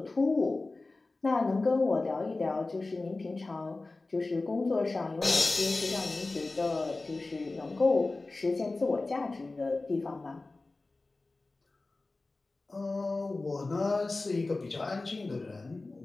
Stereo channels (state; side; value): quieter; right; 3.3 dB